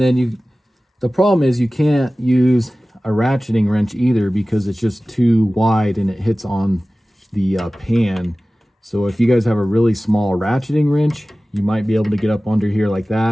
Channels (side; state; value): both; normal; correlation 0.97